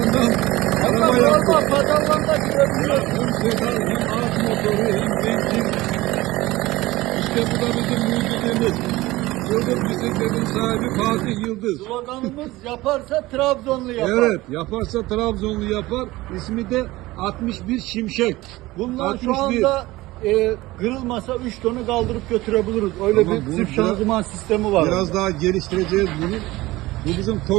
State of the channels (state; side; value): quieter; left; 19.0 dB